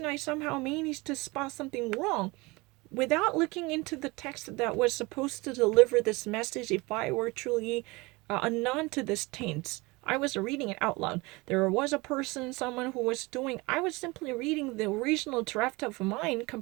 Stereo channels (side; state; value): left; quieter; 24.1 dB